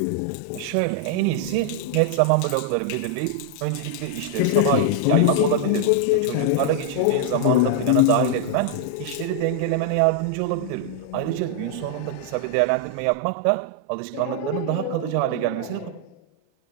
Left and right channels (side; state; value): both; different; correlation -0.01